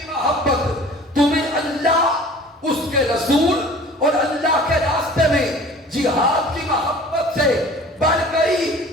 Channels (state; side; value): normal; both; correlation 0.45